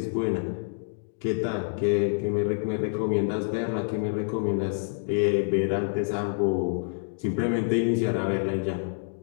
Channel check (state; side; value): silent; right; digital silence